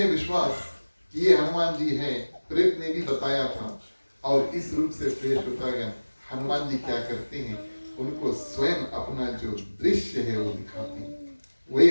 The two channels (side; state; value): both; inverted; correlation -1.00